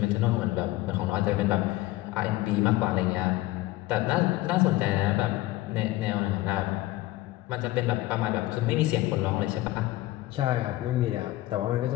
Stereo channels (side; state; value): right; quieter; 17.5 dB